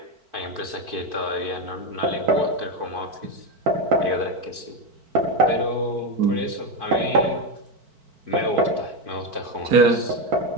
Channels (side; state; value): left; late; 4.5 ms